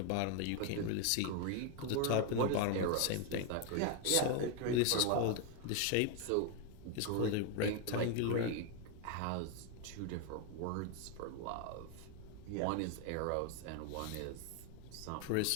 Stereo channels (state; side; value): different; both; correlation 0.01